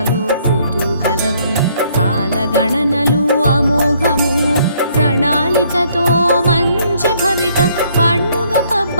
కుతూహలం కాలగణనలు అమోఘము ప్రణాళికతో మంచి భవిత పండుగ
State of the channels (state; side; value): inverted; both; correlation -0.66